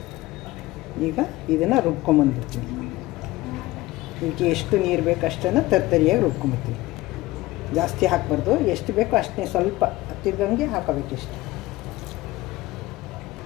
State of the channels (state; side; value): quieter; right; 18.7 dB